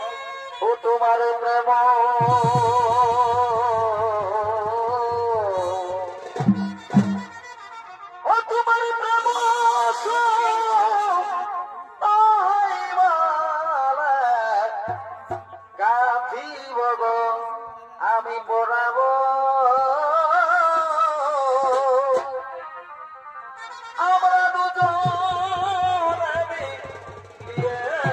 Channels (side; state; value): both; identical; correlation 1.00